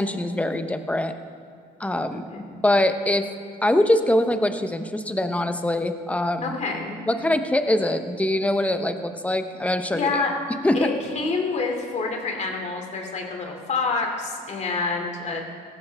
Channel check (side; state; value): both; normal; correlation 0.71